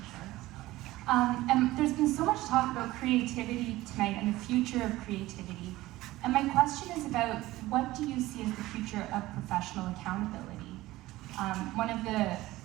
And there's been so much talk about creativity tonight and the future of creativity. And my question is about, what do you see as the future of professional accountability? One of the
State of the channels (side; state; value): left; quieter; 17.5 dB